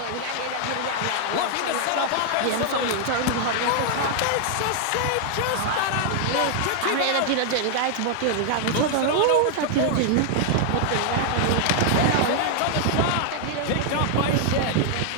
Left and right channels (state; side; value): different; both; correlation 0.00